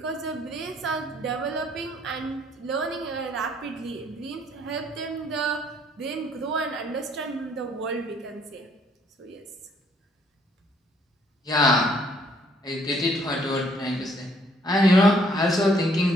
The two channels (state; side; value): normal; both; correlation 0.64